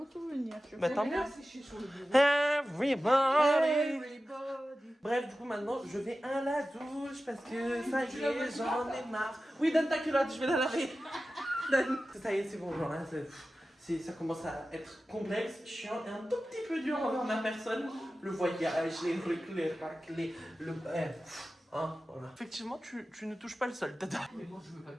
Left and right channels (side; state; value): both; normal; correlation 0.94